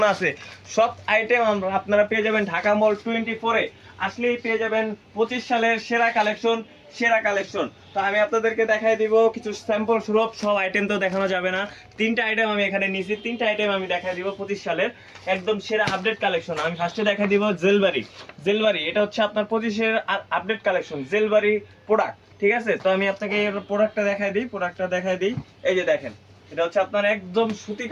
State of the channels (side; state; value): both; identical; correlation 1.00